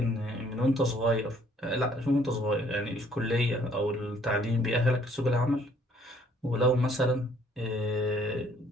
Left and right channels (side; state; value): both; normal; correlation 0.61